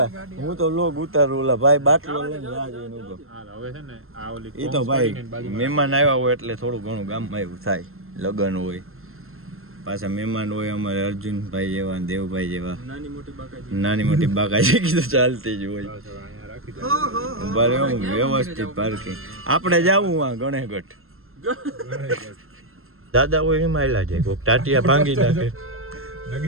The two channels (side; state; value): left; late; 0.61 ms